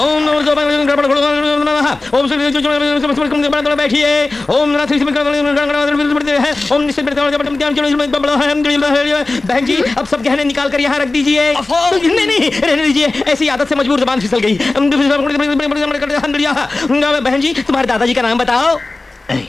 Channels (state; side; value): quieter; right; 3.2 dB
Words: नमो बैठिए। ओम बहन जी, अब सब गहने निकाल कर यहाँ रख दीजिए। नहीं, रहने दीजिए, ऐसी आदत से मजबूर जबान फिसल गई। बहन जी, तुम्हारे दादाजी का नाम बताओ।